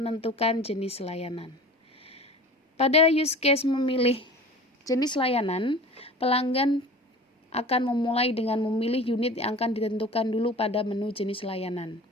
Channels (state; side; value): normal; both; correlation 0.39